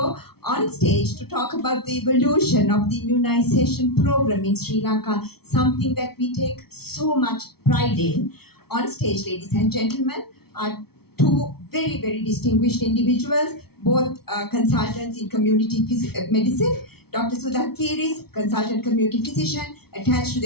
on stage to talk about the evolution of the immunization program in Sri Lanka, something that we take so much pride in. On stage, ladies and gentlemen, are two very, very distinguished individuals, both consultants in community medicine. Dr. Sudha Piris, consultant community physician, attached to the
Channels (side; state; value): right; late; 0.95 ms